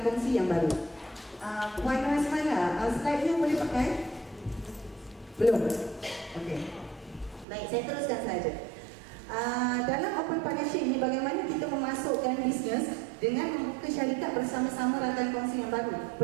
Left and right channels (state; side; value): drops out; left; at 7.5 s